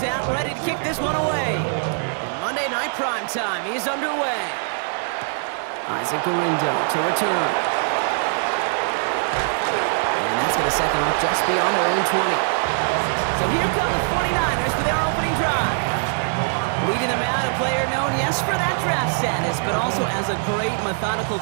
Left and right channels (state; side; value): silent; left; 60 dB below the other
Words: out, ready to kick this one away. And Monday Night Primetime is underway. Isaac Gorindo to return. And that's going to set them up just beyond their own 20. So here come the 49ers for their opening drive. Leading them out, a player known, yes, for that draft status, but also as a great methodical